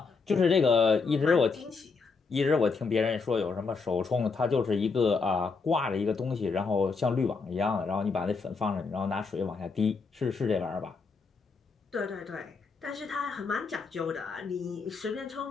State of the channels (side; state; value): right; quieter; 4.7 dB